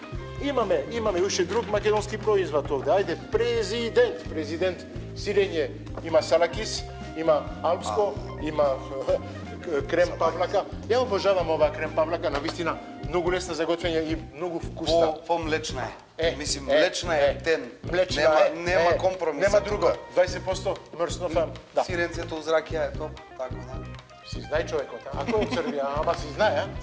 Имаме уште друг македонски производ овде. Ајде, президент сирење, има салакис, има алпско, има крем павлака. Ја обожавам оваа крем павлака, навистина многу лесна за готвење и многу вкусна. По-млечна е. Мислим, млечна е тен. Нема компромис. Нема друго. 20% мрснофам. Да. Сиренцето уз ракија е топ, така да. Си знае човекот, а? Ако е од Србија, ама си знае, а?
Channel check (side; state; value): both; identical; correlation 1.00